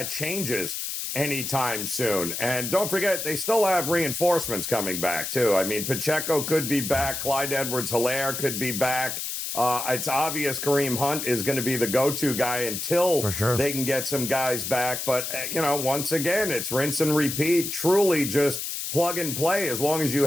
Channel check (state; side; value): noise; left; hiss, 4 dB below the sound